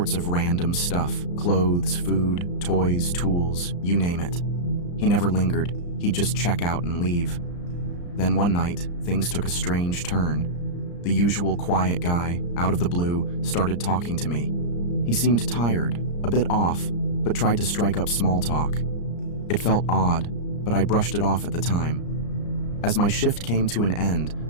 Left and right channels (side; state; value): right; late; 34 ms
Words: of random stuff: clothes, food, toys, tools, you name it. He never lingered. He'd just check out and leave. Then one night, things took a strange turn. The usual quiet guy, out of the blue, started talking to me. He seemed tired, a bit off, but tried to strike up small talk. It felt odd, but I brushed it off at the time. As my shift came to an end,